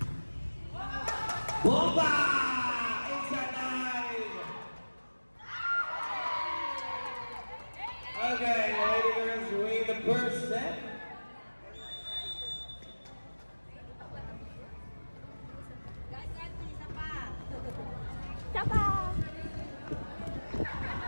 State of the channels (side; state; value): both; inverted; correlation -1.00